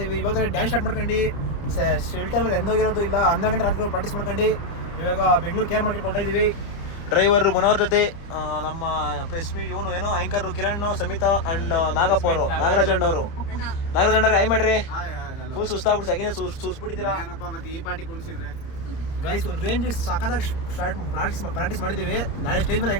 ಇದ್ವಿ. ಇವಾಗ ಡ್ಯಾನ್ಸ್ ಸ್ಟಾರ್ಟ್ ಮಾಡ್ಕೊಂಡು ಶೆಲ್ಟರ್ ಎಂದೋಗಿರೋದು ಇಲ್ಲ. 12 ಗಂಟೆ ರಾತ್ರಿ ಪ್ರಾಕ್ಟೀಸ್ ಮಾಡ್ಕೊಂಡು ಇವಾಗ ಬೆಂಗಳೂರು ಕೇರ್ ಮಾರ್ಕೆಟ್ ಕೊಡ್ತಾ ಇದೀವಿ. ಡ್ರೈವರ್ ಮನೋಹರ್ ಜೊತೆ ನಮ್ಮ ಪ್ರೆಸ್ಮಿ ಇವನು ಏನೋ ಆಂಕರ್ ಕಿರಣ್, ಸಮಿತಾ ಅಂಡ್ ನಾಗಪ್ಪ ಅವರು, ನಾಗರಾಜ್ ಅಣ್ಣವರು. ಆಯ್ ಮಾಡ್ರಿ, ಫುಲ್ ಸುಸ್ತಾಗ್ಬಿಟ್ಟು ಸೆಕೆಂಡ್ ಸುಸ್ಬಿಟ್ಟಿದ್ದೀರಾ. ಗೈಸ್ ಒಂದು ರೇಂಜ್ ಸಾಕಾದಾಗ ಪ್ರಾಕ್ಟೀಸ್ ಮಾಡಿದ್ದೀವಿ. ನಾಳೆ ಸ್ಟೇಜ್ ಮೇಲೆ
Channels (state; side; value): late; right; 29 ms